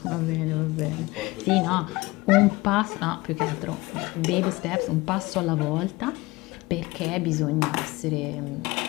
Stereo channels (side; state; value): right; quieter; 21.6 dB